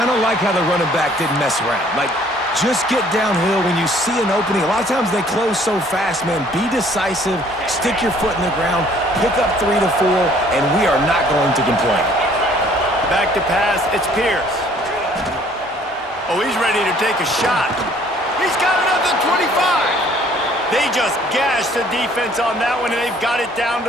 of like how the running back didn't mess around. Like, just get downhill when you see an opening. A lot of times they close so fast, man. Be decisive, stick your foot in the ground, pick up 3 to 4, and we are not going to complain. Back to pass, it's Pierce. Oh, he's ready to take a shot. He's got another 25. They just gashed the defense on that one, and they've got it down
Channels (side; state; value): both; normal; correlation 0.58